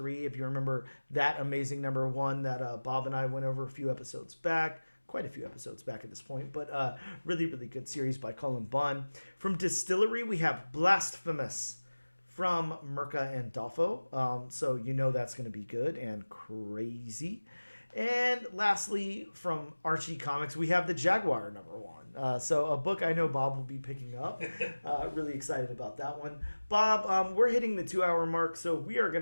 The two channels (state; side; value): inverted; both; correlation -1.00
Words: if you remember that amazing number 1 that Bob and I went over a few episodes back. Quite a few episodes back at this point, but really, really good series by Cullen Bunn. From Distillery, we have Blasphemous from Mirka and Dolfo. So you know that's going to be good and crazy. And lastly, from Archie Comics, we have the Jaguar #1. So a book I know Bob will be picking up. Really excited about that one. Bob, we're hitting the 2-hour mark, so we are